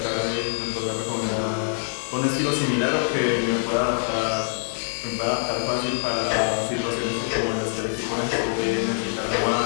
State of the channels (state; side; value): silent; right; digital silence